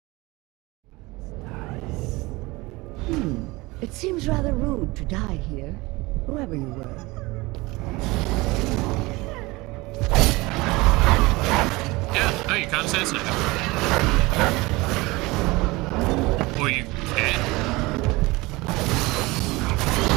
It seems rather rude to die here, whoever you were. Yeah, no, you can't assassinate her. Or you can.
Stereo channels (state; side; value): quieter; left; 22.4 dB